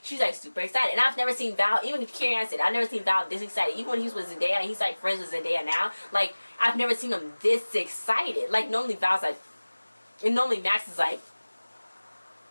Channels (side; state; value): both; inverted; correlation -1.00